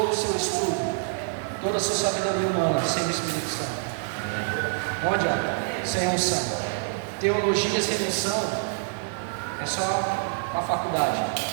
o seu estudo, toda a sua sabedoria humana, sem o Espírito Santo. Não adianta, sem unção. Teologia sem unção é só a faculdade.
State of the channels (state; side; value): silent; left; digital silence